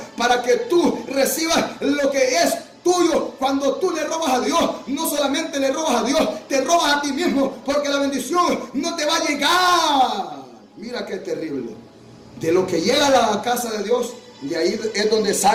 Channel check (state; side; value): identical; both; correlation 1.00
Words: para que tú recibas lo que es tuyo. Cuando tú le robas a Dios, no solamente le robas a Dios, te robas a ti mismo, porque la bendición no te va a llegar. Mira qué terrible. De lo que llega a la casa de Dios, de ahí es donde